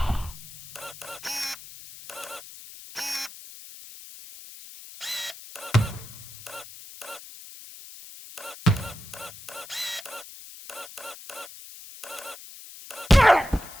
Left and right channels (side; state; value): left; noise; hiss, 15 dB below the sound